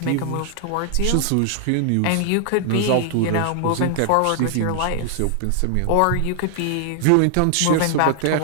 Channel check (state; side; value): different; both; correlation 0.00